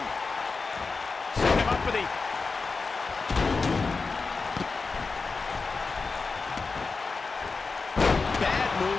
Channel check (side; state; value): right; quieter; 4.3 dB